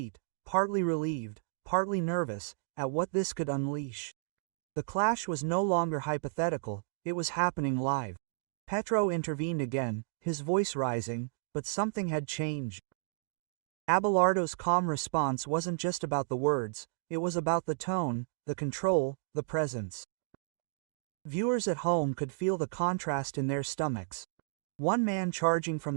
partly relieved, partly nervous, at what this could unleash. The clash was no longer hypothetical, it was happening live. Petro intervened again, his voice rising, but something had changed. Abelardo's calm response wasn't just about the words, it was about the tone, the control, the presence. Viewers at home could feel the contrast in their stomachs. One man charging from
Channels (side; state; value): left; silent; digital silence